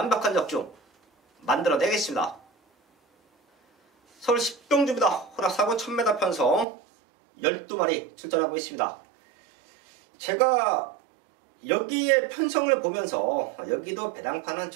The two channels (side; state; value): left; drops out; at 6.7 s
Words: 적중 만들어내겠습니다. 서울 10경주입니다. 호락 4군 1000m 편성 12마리 출전하고 있습니다. 제가 여기에 편성을 보면서 여기도 배당판은